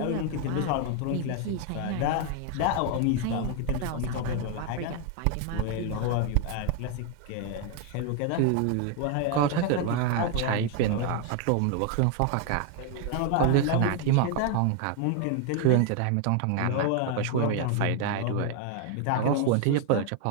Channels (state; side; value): different; both; correlation 0.01